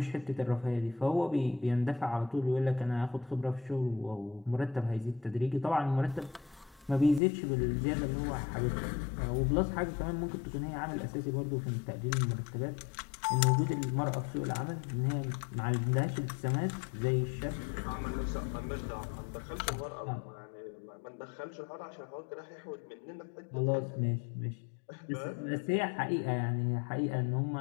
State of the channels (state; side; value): drops out; right; at 7.2 s